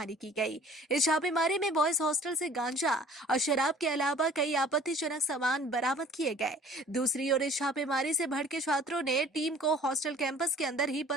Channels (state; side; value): normal; both; correlation 0.50